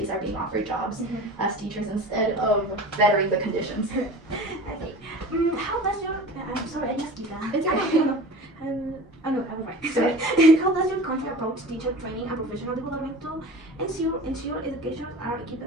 are being offered jobs as teachers instead of bettering the conditions. Okay. How does your sorry, I just did that. It's okay. No, I was right. Sorry. How does your country approach teacher training and professional development to ensure educators are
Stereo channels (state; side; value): normal; both; correlation 0.37